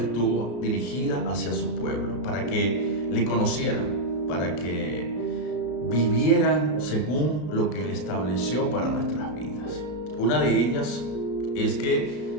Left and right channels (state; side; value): late; right; 33 ms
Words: dirigida hacia su pueblo, para que le conocieran, para que vivieran según lo que Él estableció para nuestras vidas. Una de ellas es